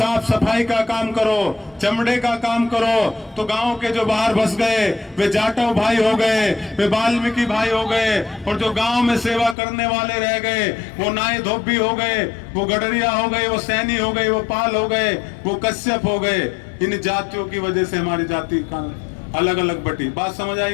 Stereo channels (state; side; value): drops out; right; at 9.6 s